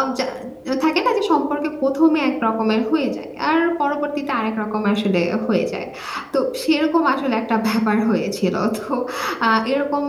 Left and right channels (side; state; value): both; identical; correlation 1.00